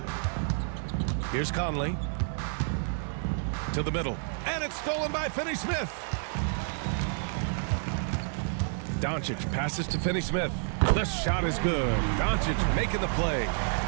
Here's Conley. To the middle. And it's stolen by Finney-Smith. Doncic passes to Finney-Smith. The shot is good. Doncic making the play.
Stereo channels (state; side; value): silent; left; 58 dB below the other